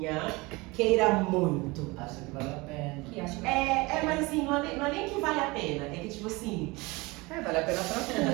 queira muito. Acho que vale a pena. Mas assim, não é nem que vale a pena, é que tipo assim... vale a pena pra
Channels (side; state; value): left; quieter; 23.9 dB